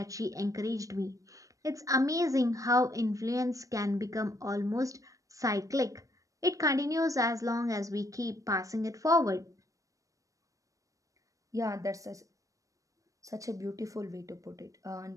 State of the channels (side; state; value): left; late; 0.16 ms